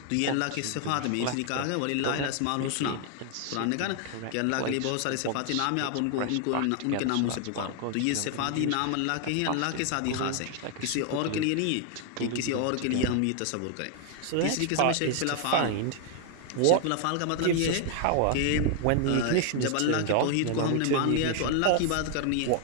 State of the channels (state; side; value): different; both; correlation 0.00